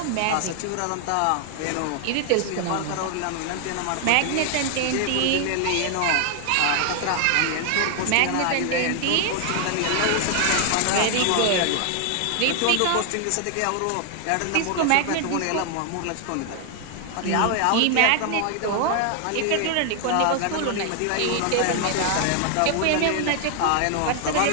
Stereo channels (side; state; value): both; different; correlation 0.00